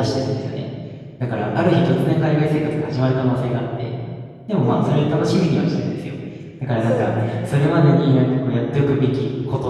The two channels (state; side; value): identical; both; correlation 1.00